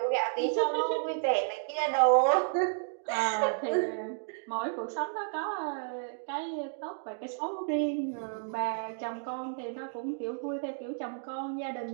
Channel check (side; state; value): left; silent; digital silence